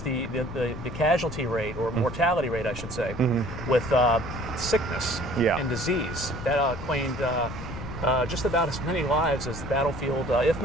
casualty rate, or mortality rate, I should say, with sickness and disease. That claimed just about as many lives as the battlefield, if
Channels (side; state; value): left; noise; rumble, 9 dB below the sound